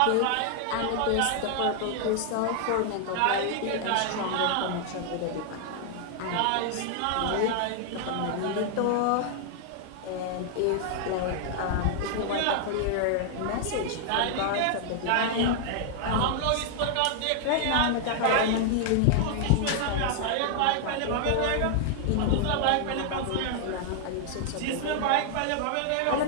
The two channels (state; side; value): different; both; correlation 0.00